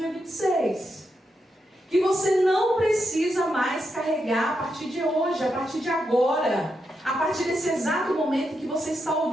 Que você não precisa mais carregar a partir de hoje, a partir de agora, a partir desse exato momento que você está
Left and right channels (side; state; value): both; normal; correlation 0.84